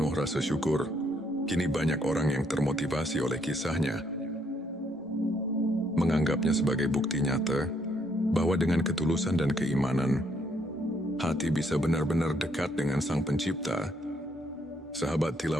rasa syukur. Kini banyak orang yang termotivasi oleh kisahnya, menganggapnya sebagai bukti nyata bahwa dengan ketulusan dan keimanan, hati bisa benar-benar dekat dengan Sang Pencipta. Sahabat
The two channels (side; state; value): both; normal; correlation 0.71